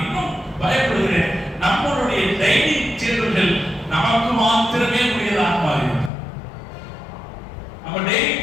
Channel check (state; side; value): drops out; right; at 6.1 s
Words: இன்னும் பயப்படுகிறேன். நம்மளுடைய டைனிங் டேபிள்கள் நமக்கு மாத்திரமே உரியதாக மாறிவிட்டது. நம்ம